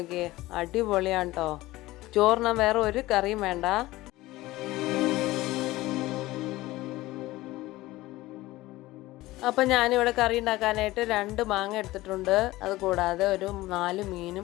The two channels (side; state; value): right; quieter; 18.1 dB